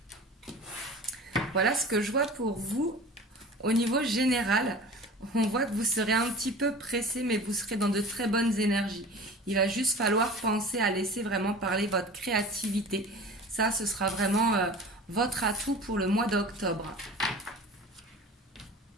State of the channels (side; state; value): both; normal; correlation 0.38